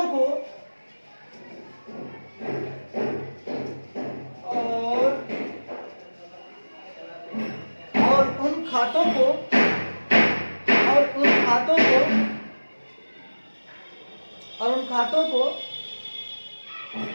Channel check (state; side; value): inverted; both; correlation -1.00